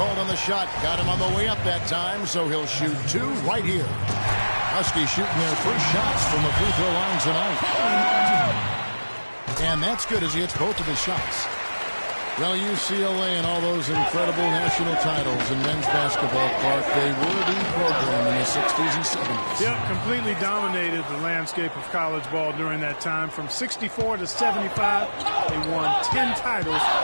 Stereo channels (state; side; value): inverted; both; correlation -1.00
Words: on the shot. Got him on the way up that time, so he'll shoot 2 right here. Huskies shooting their first shots from the free throw line tonight. And that's good as he hits both of his shots. Well, UCLA and all those incredible national titles in men's basketball, Clark, they were the program in the 60s and 70s. Yeah, completely dominated the landscape of college ball during that time. From 64 to 75, they won 10 titles